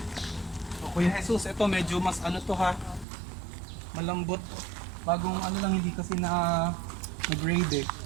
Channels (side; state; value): left; drops out; at 3.1 s